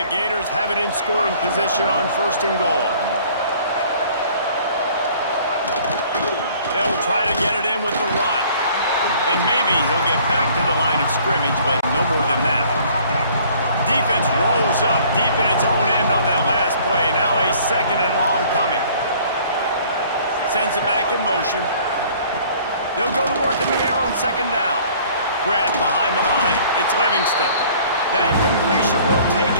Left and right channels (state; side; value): inverted; both; correlation -0.54